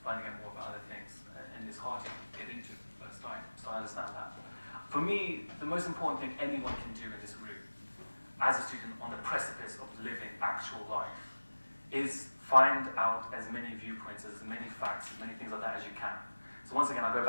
finding out more about other things, and it's hard to get into the first time, so I understand that. For me, the most important thing anyone can do in this room, as a student on the precipice of living actual life, is find out as many viewpoints, as many facts, as many things like that as you can. So once again, I'll go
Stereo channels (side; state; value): both; inverted; correlation -1.00